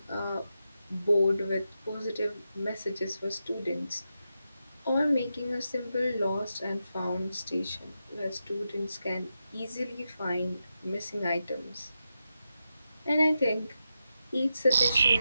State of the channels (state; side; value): inverted; both; correlation -0.88